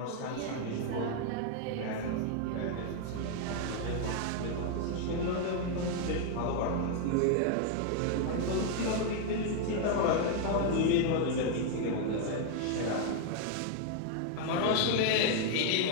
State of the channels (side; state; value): both; different; correlation 0.00